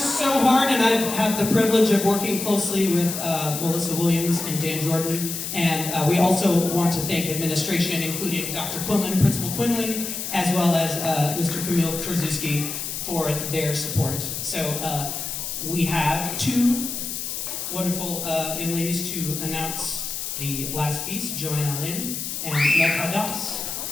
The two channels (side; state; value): left; noise; hiss, 5 dB below the sound